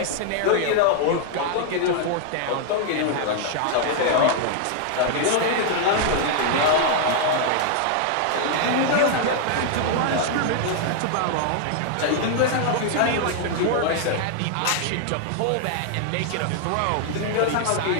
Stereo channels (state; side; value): different; both; correlation 0.00